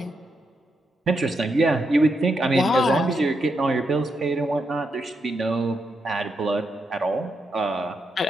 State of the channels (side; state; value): both; normal; correlation 0.82